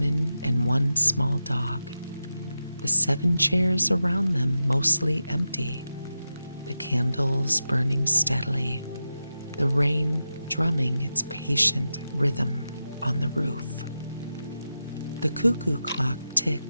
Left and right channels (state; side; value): inverted; both; correlation -0.91